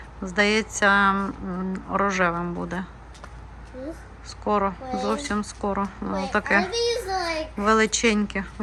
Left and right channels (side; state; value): both; identical; correlation 1.00